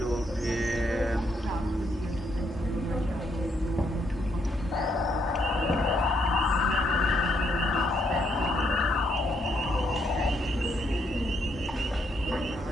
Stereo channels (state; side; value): normal; both; correlation 0.74